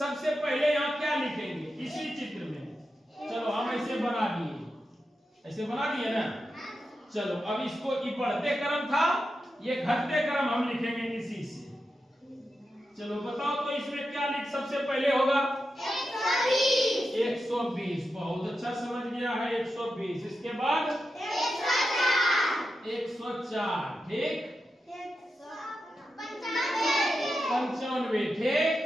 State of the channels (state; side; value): normal; both; correlation 0.89